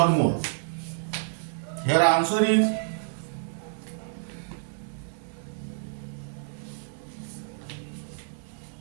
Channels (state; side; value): silent; left; digital silence